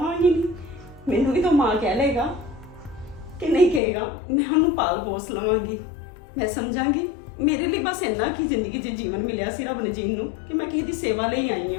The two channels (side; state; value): right; drops out; at 3.8 s